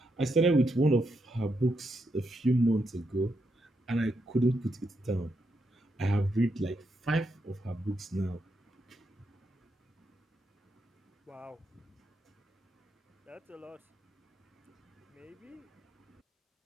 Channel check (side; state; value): both; normal; correlation 0.82